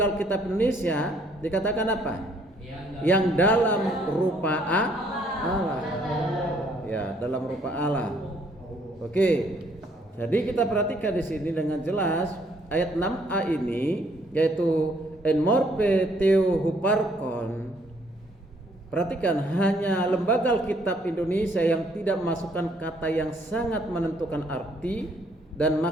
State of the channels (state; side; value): normal; both; correlation 0.66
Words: Alkitab Indonesia dikatakan apa? Yang dalam rupa Allah. Ya, dalam rupa Allah. Oke. Jadi kita perhatikan di sini dengan jelas ayat 6a ini, yaitu enmorphe theo huparkon. perhatikan, hanya Lembaga Alkitab Indonesia yang tidak memasukkan kata yang sangat menentukan arti dan